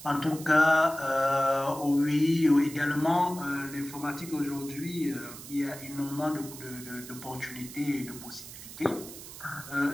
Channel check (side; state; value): right; noise; hiss, 14 dB below the sound